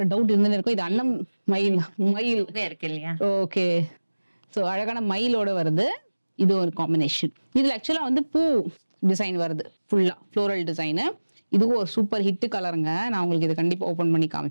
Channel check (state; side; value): inverted; both; correlation -1.00